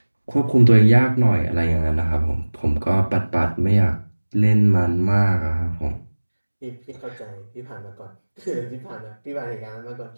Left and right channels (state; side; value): inverted; both; correlation -1.00